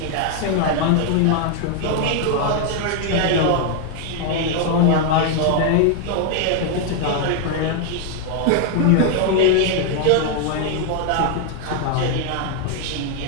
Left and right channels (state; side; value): different; both; correlation 0.00